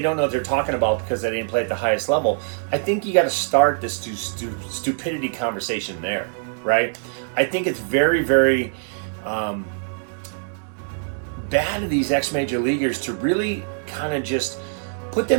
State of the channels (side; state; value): left; silent; digital silence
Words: know what they're talking about because they didn't play at the highest level, I think you got to start this stupidity conversation there, right? I think it's very, very bad of these ex-major leaguers to really kind of just put